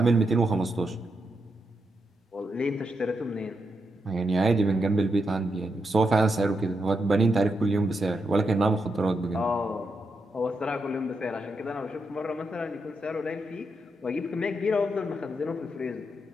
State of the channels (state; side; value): normal; both; correlation 0.83